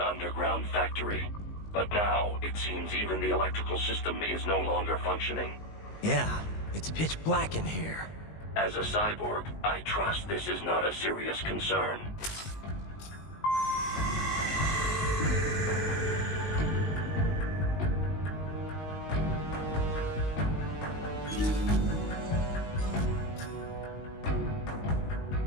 factory. But now, it seems even the electrical system is no longer functioning. Yeah, it's pitch black in here. As a cyborg, I trust this is not a serious concern.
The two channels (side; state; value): right; late; 19 ms